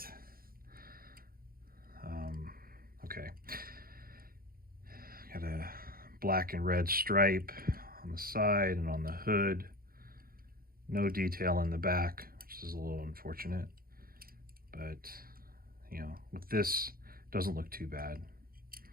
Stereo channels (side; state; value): left; late; 0.42 ms